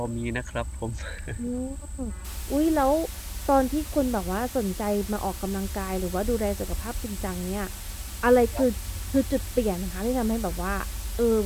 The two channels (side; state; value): both; identical; correlation 1.00